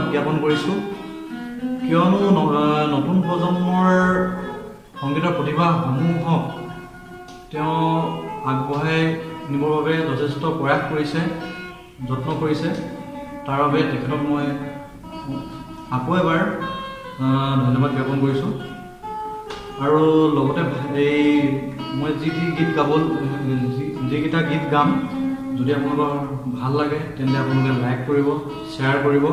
জ্ঞাপন কৰিছোঁ। কিয়নো নতুন প্ৰজন্মৰ সংগীতৰ প্ৰতিভাসমূহক তেওঁ আগবঢ়াই নিবৰ বাবে যথেষ্ট প্ৰয়াস কৰিছে, যত্ন কৰিছে। তাৰ বাবে তেখেতক মই আকৌ এবাৰ ধন্যবাদ জ্ঞাপন কৰিছোঁ। আৰু লগতে মই যিকেইটা গীত গাম, যদি আপোনালোকৰ ভাল লাগে তেন্তে আপোনালোকে লাইক কৰিব, শ্বেয়াৰ কৰিব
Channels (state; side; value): identical; both; correlation 1.00